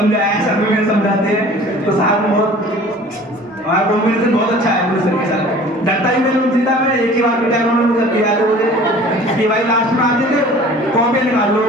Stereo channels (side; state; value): both; normal; correlation 0.46